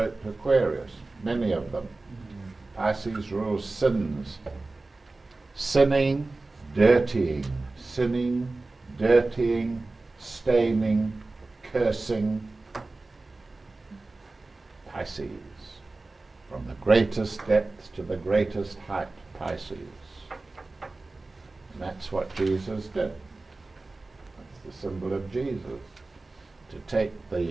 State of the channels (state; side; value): quieter; left; 3.3 dB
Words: Aquarius. Many of them. Pisces rules sins. Sinning, dirtying. Sinning, dirtying, staining, cursing. Pisces. From the greatest depth to the greatest height, Pisces. And that's what Jesus did. That's the symbol of Jesus. To take